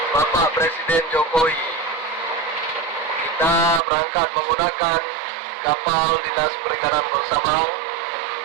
Bapak Presiden Jokowi, kita berangkat menggunakan kapal Dinas Perikanan Bersabang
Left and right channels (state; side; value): drops out; left; at 3.8 s